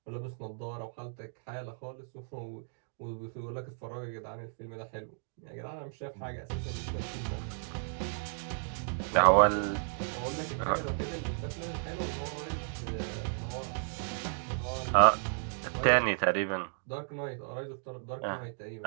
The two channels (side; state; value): left; silent; digital silence